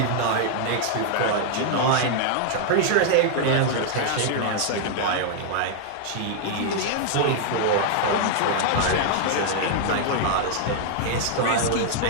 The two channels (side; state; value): both; different; correlation -0.01